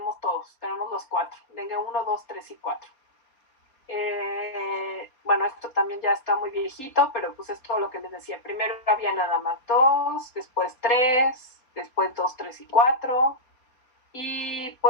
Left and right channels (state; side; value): late; right; 4.1 ms